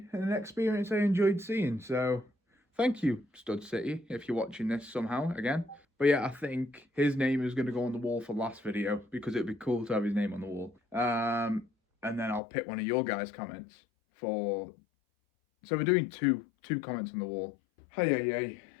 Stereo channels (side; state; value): right; drops out; at 12.4 s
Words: and an experience I enjoyed seeing. So thank you, Stud City, if you're watching this somehow again. But yeah, I think his name is going to go on the wall for last video because it'd be cool to have his name on the wall. And then I'll pick one of your guys' comments for... So we're doing two comments on the wall. Hey.